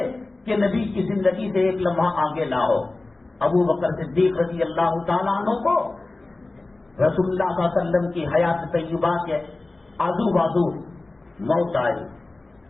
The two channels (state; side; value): quieter; right; 3.1 dB